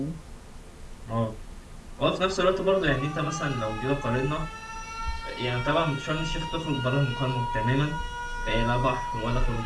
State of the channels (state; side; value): identical; both; correlation 1.00